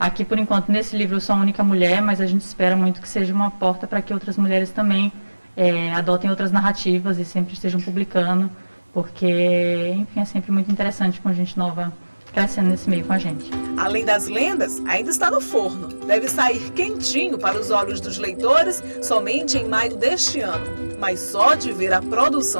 por enquanto, nesse livro eu sou a única mulher, mas a gente espera muito que seja uma porta para que outras mulheres também adotem outras narrativas e sempre estejam publicando, porque, enfim, é sempre muito interessante com gente nova crescendo nesse meio com a gente. Além das lendas, ainda está no forno. Deve sair quentinho para os olhos dos leitores somente em maio deste ano. Mas só de ver a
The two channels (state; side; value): inverted; both; correlation -1.00